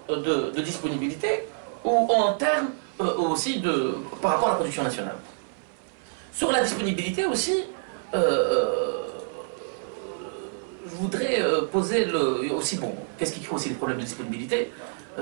de disponibilité ou en termes aussi par rapport à la production nationale. Sur la disponibilité aussi, je voudrais poser aussi, bon, qu'est-ce qui crée aussi les problèmes de disponibilité?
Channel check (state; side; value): silent; left; 60 dB below the other